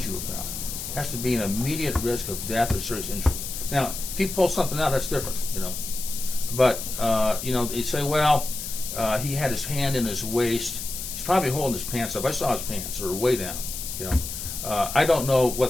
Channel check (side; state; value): left; noise; hiss, 7 dB below the sound